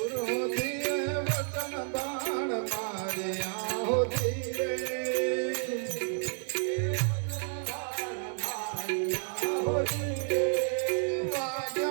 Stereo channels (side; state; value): left; silent; 57 dB below the other